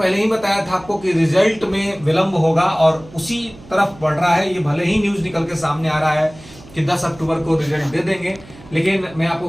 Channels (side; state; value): right; noise; hum, 21 dB below the sound